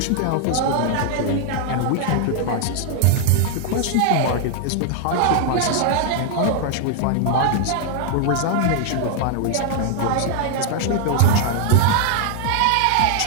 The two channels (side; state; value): both; different; correlation 0.00